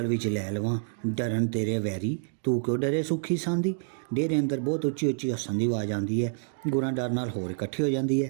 ਵਿੱਚ ਲੈ ਲਵਾਂ, ਡਰਨ ਤੇਰੇ ਵੈਰੀ, ਤੂੰ ਕਿਉਂ ਡਰੇ ਸੁੱਖੀ ਸਾਂਦੀ। ਡੇਰੇ ਅੰਦਰ ਬਹੁਤ ਉੱਚੀ ਉੱਚੀ ਹੱਸਣ ਦੀ ਆਵਾਜ਼ ਆਉਂਦੀ ਹੈ। ਗੁਰਾਂ ਡਰ ਨਾਲ ਹੋਰ ਇਕੱਠੀ ਹੋ ਜਾਂਦੀ ਹੈ।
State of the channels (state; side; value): silent; left; digital silence